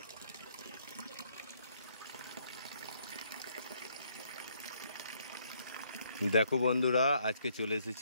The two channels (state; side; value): inverted; both; correlation -0.69